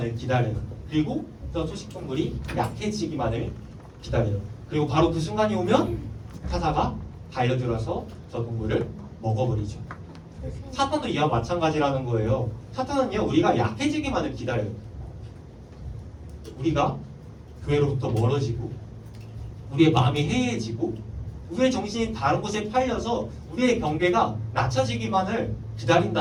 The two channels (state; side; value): identical; both; correlation 1.00